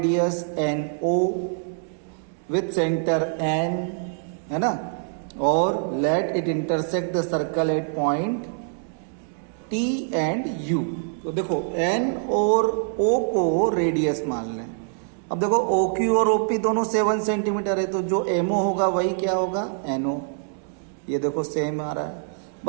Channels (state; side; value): silent; left; digital silence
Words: N O with centre N, है ना, और let it intersect the circle at point T and U. तो देखो एन और ओ को रेडियस मान लें। अब देखो ओ क्यू और ओपी दोनों 7 सेंटीमीटर है, तो जो एमओ होगा वही क्या होगा, एनओ। ये देखो सेम आ रहा है,